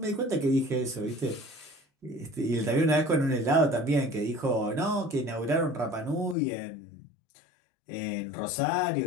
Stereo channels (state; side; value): drops out; right; at 6.4 s